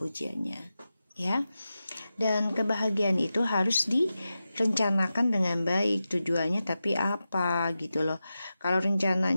ya. Dan kebahagiaan itu harus direncanakan dengan baik tujuannya, tapi apa gitu loh. Kalau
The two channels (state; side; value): inverted; both; correlation -0.92